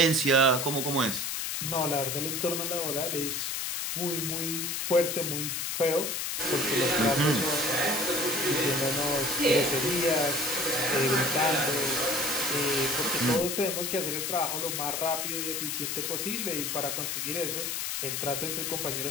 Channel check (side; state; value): left; noise; hiss, 2 dB below the sound